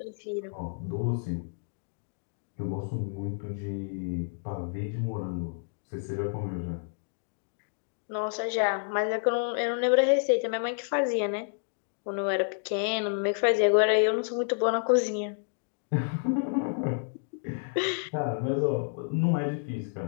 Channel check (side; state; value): right; silent; digital silence